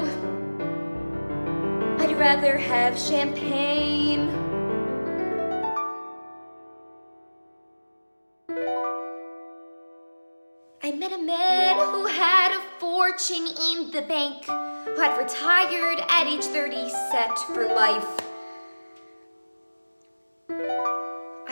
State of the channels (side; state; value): both; inverted; correlation -1.00